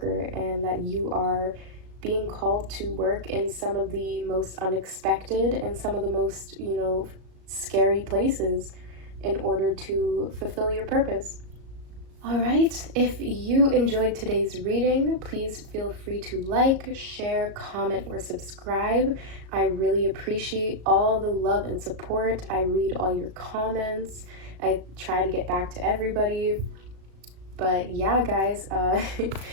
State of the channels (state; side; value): late; left; 37 ms